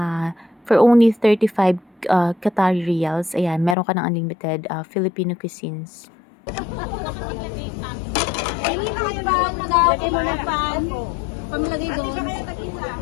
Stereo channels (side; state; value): right; drops out; at 3.8 s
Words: for only 35 Qatari Riyals, ayan, meron ka ng unlimited Filipino cuisines. Lagay mo na pan. Pamilagay doon.